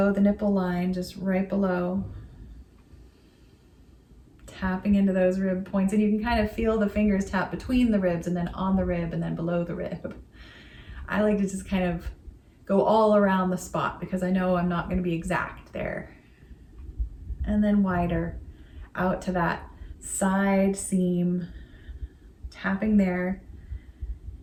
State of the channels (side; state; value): both; identical; correlation 1.00